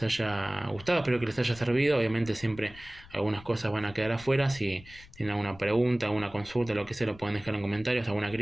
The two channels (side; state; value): left; noise; rumble, 20 dB below the sound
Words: haya gustado, espero que les haya servido. Obviamente siempre algunas cosas van a quedar afuera. Si tienen alguna pregunta, alguna consulta, lo que sea, lo pueden dejar en comentarios, alguna